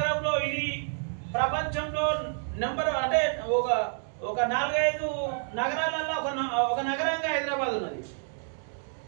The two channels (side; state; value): left; silent; digital silence